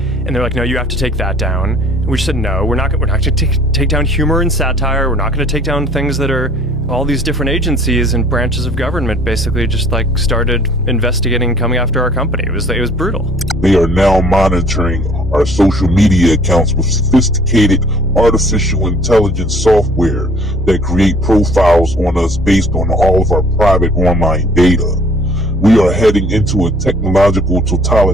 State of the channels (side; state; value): both; normal; correlation 0.54